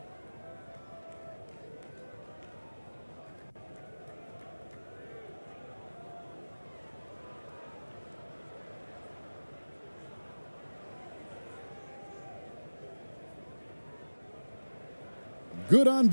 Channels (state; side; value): inverted; both; correlation -1.00